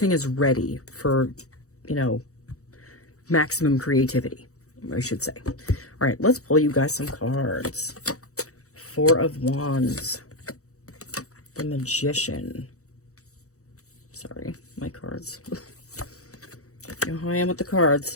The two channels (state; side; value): late; right; 0.65 ms